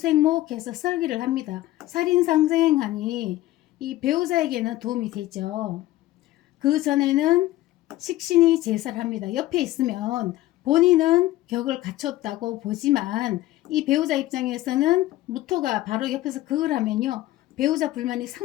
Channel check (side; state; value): right; quieter; 16.1 dB